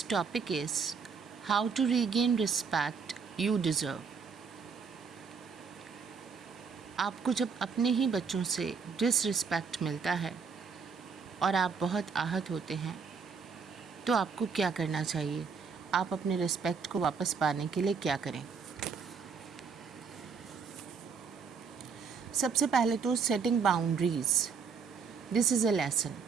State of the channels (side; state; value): left; quieter; 5.7 dB